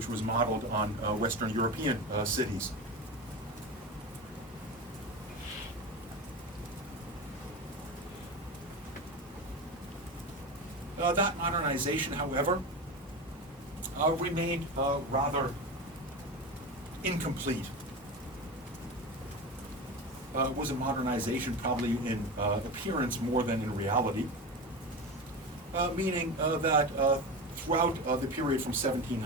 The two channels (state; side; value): normal; both; correlation 0.24